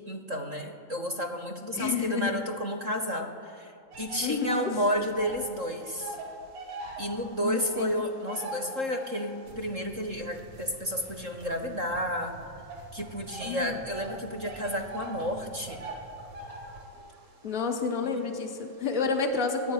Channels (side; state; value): left; late; 3.7 ms